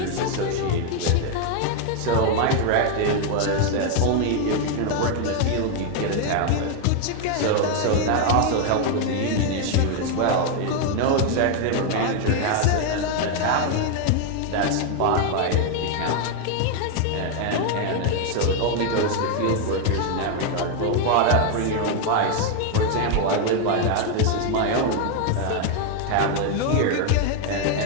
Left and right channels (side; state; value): both; different; correlation 0.01